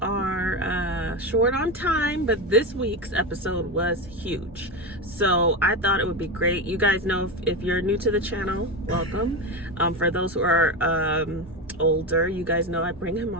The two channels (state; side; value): normal; both; correlation 0.17